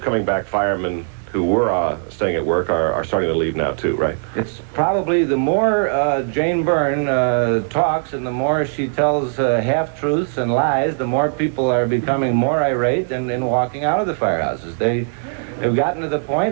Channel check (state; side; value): silent; left; 65 dB below the other